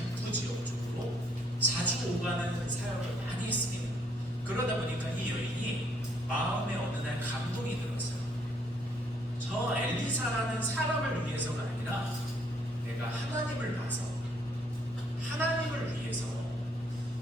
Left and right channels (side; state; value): both; normal; correlation 0.68